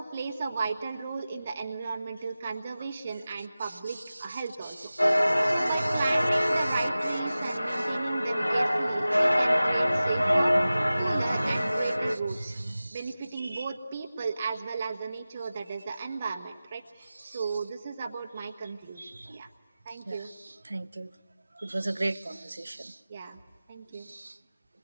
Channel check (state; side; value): inverted; both; correlation -0.96